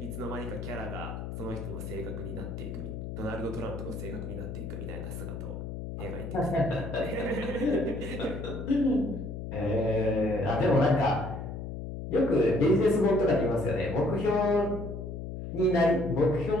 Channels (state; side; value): noise; left; hum, 7 dB below the sound